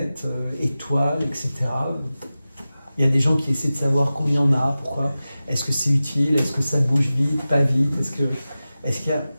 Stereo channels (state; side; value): inverted; both; correlation -0.95